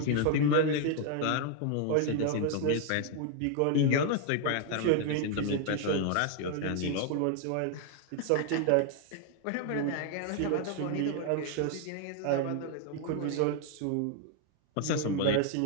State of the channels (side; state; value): both; different; correlation 0.00